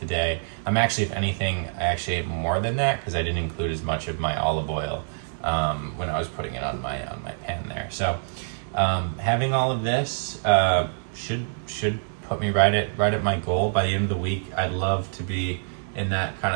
day. I'm actually, if anything, I actually ate more than that because I didn't include as much of my olive oil when I was putting it on my pan there. So having all of this should put me right at my goal. By the end of the week, I'd love to be in that kind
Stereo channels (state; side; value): silent; left; digital silence